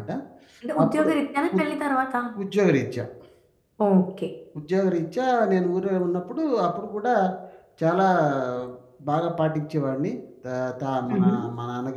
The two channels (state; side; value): identical; both; correlation 1.00